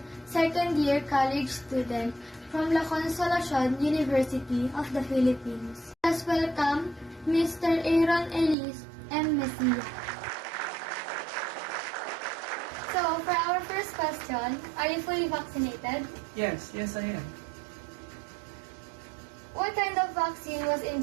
second-year college student from La Consolacion University of the Philippines. Let's welcome Mr. Aaron Elise M. Messia. So, for our first question, are you fully vaccinated? Yes, I am. What kind of vaccine was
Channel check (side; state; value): left; drops out; at 8.6 s